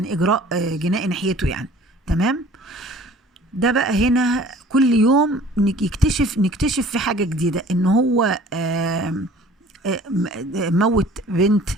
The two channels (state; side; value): normal; both; correlation 0.49